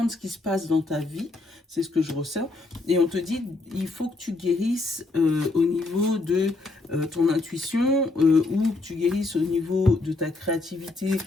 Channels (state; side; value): quieter; right; 3.2 dB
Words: ce qui se passe dans ta vie, c'est ce que je ressens. Et on te dit, il faut que tu guérisses au niveau de ton intuition ou que tu guérisses au niveau de ta créativité.